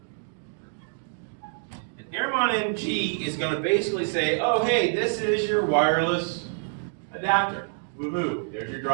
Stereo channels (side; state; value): left; silent; digital silence